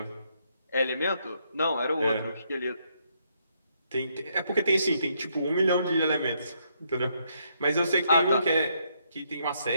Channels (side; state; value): both; inverted; correlation -0.74